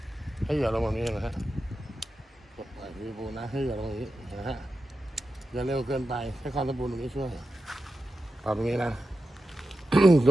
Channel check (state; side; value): normal; both; correlation 0.91